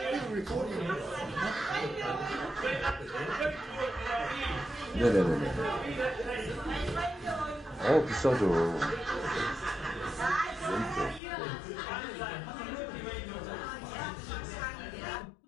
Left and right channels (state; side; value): drops out; right; at 11.2 s